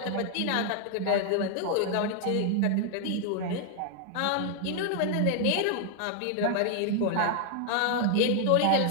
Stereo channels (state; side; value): different; both; correlation 0.00